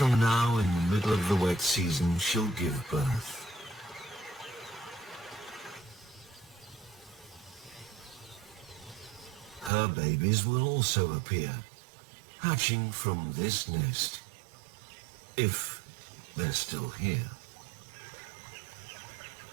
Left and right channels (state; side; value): drops out; left; at 9.7 s